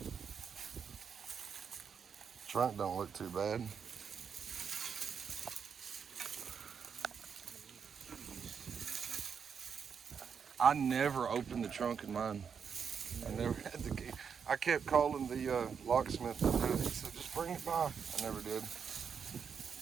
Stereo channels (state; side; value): quieter; left; 6.7 dB